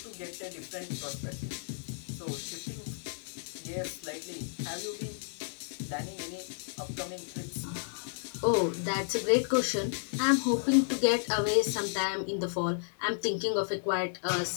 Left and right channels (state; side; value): silent; right; digital silence